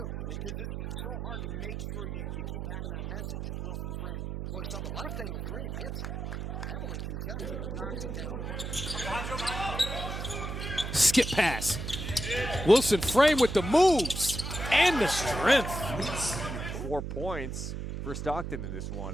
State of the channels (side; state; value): right; noise; hum, 5 dB below the sound